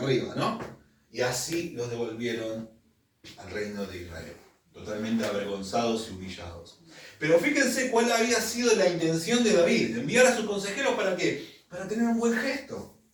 arriba, ¿no? Y así los devolvieron al reino de Israel, totalmente avergonzados y humillados. Pero fíjense cuál había sido la intención de David, enviar a sus consejeros ¿para qué? Para tener un buen gesto.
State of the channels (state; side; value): identical; both; correlation 1.00